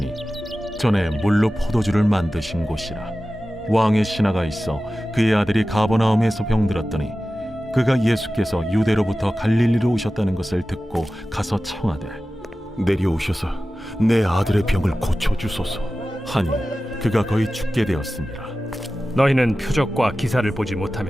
전에 물로 포도주를 만드신 곳이라. 왕의 신하가 있어 그의 아들이 가버나움에서 병들었더니 그가 예수께서 유대로부터 갈릴리로 오셨다는 것을 듣고 가서 청하되 내려오셔서 내 아들의 병을 고쳐주소서. 하니 그가 거의 죽게 되었습니다. 너희는 표적과 기사를 보지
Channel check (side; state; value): both; normal; correlation 0.95